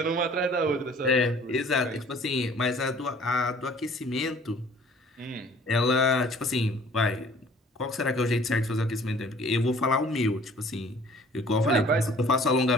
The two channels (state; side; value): normal; both; correlation 0.53